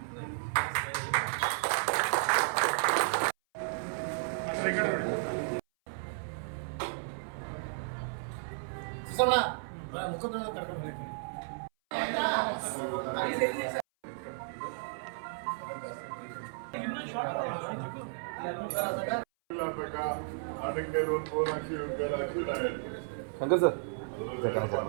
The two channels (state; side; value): silent; left; 55 dB below the other